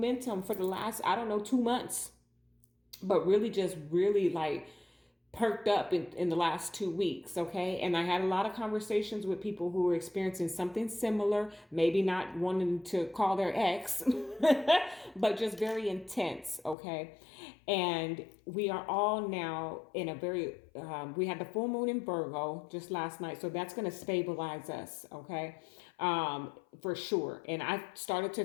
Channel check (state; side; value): drops out; right; at 16.8 s